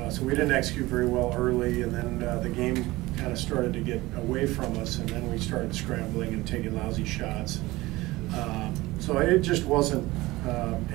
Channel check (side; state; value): left; quieter; 19.6 dB